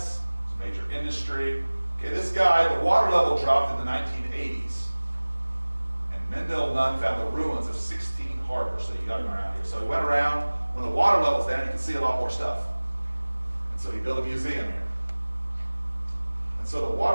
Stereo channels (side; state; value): both; inverted; correlation -1.00